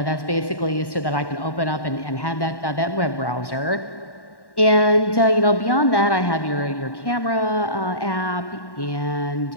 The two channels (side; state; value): right; late; 1.1 ms